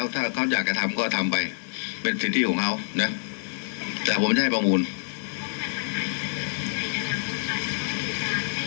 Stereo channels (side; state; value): right; silent; digital silence